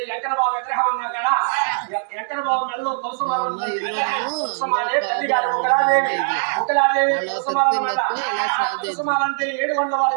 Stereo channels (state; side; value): silent; left; digital silence